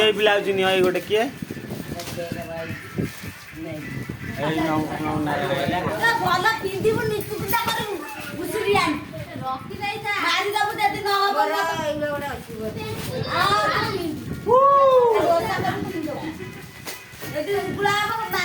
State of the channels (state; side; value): identical; both; correlation 1.00